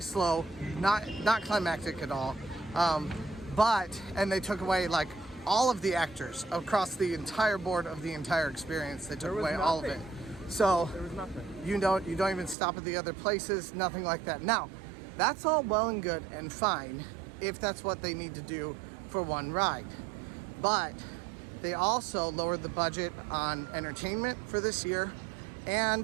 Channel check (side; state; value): left; drops out; at 12.6 s